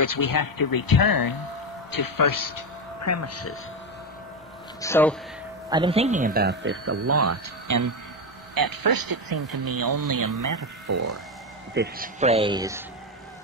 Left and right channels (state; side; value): normal; both; correlation 0.12